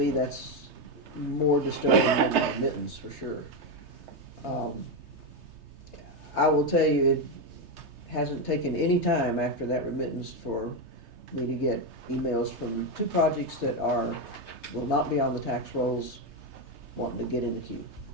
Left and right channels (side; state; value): left; late; 3.3 ms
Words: that's more disturbing than the remittance, for sure. I will tell you, it hasn't taken any time after that remittance for me to get emails from 2 projects that will not be on the tax rolls wanting to get in the queue.